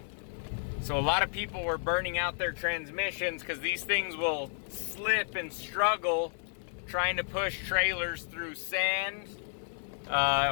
So a lot of people were burning out their transmissions because these things will slip and struggle trying to push trailers through sand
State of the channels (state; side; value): silent; right; digital silence